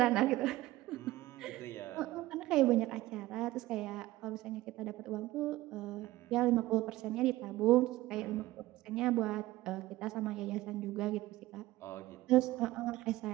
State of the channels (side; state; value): left; quieter; 17.4 dB